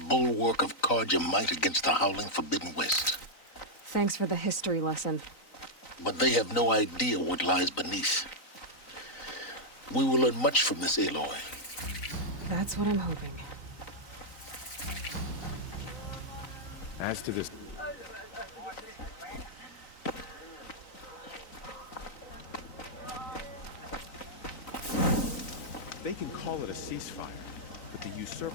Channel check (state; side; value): late; right; 3.9 ms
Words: of Carja might against the howling Forbidden West. Thanks for the history lesson. But they have no idea what lies beneath. We will learn much from this aloy. That's what I'm hoping. As to this... They can call it a ceasefire, but the